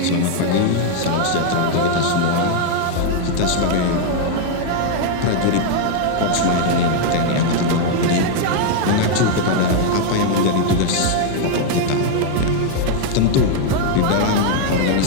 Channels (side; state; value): both; different; correlation 0.00